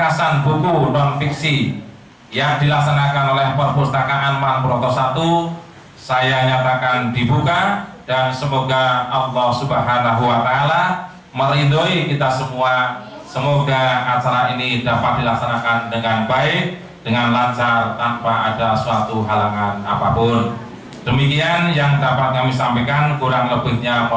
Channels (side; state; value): both; identical; correlation 1.00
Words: buku non-fiksi yang dilaksanakan oleh Perpustakaan Purwokerto 1 saya nyatakan dibuka, dan semoga Allah Subhanahu wa Ta'ala meridhoi kita semua. Semoga acara ini dapat dilaksanakan dengan baik, dengan lancar, tanpa ada suatu halangan apapun. Demikian yang dapat kami sampaikan, kurang lebihnya